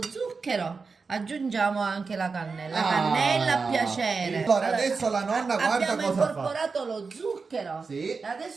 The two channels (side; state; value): left; quieter; 4.6 dB